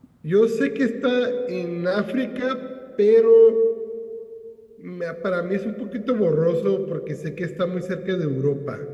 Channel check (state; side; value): identical; both; correlation 1.00